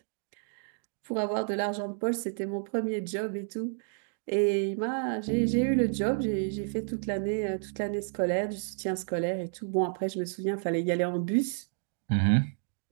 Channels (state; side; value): silent; left; digital silence